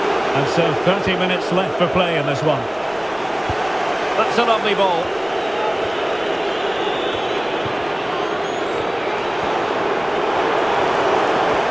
And so 30 minutes left for play in this one. That's a lovely ball.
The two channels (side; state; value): right; noise; rumble, 27 dB below the sound